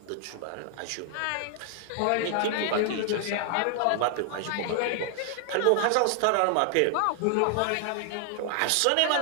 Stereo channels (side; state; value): both; different; correlation 0.00